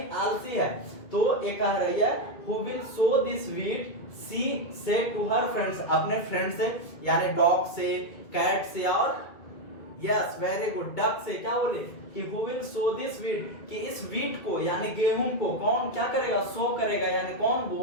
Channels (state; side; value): late; right; 2.3 ms